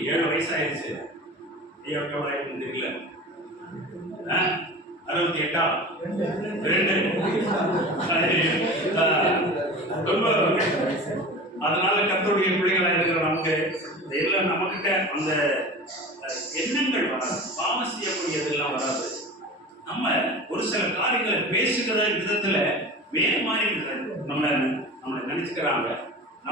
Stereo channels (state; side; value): normal; both; correlation 0.35